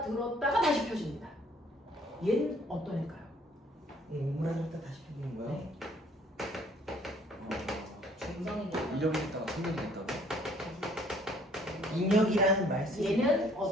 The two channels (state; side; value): normal; both; correlation 0.60